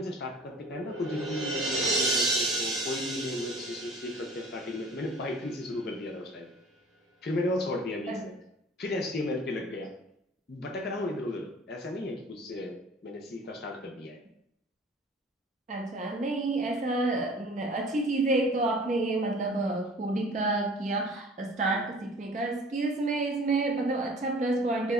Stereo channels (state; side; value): normal; both; correlation 0.47